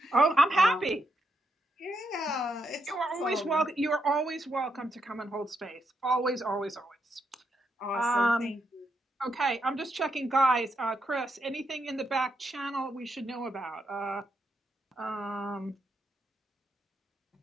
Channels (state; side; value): normal; both; correlation 0.80